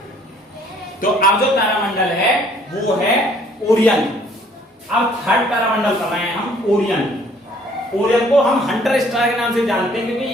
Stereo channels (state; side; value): normal; both; correlation 0.59